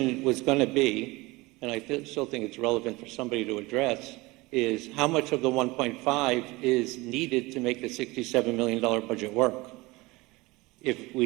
was going to be, and I still think it's relevant for somebody to address, is how much of the 1.5 is needed to make the $67 million budget work? If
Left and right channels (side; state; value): left; quieter; 22.3 dB